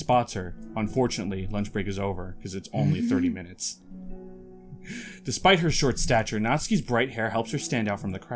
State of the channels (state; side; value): identical; both; correlation 1.00